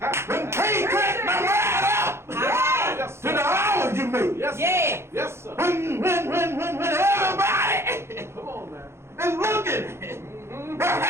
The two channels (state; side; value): late; left; 0.12 ms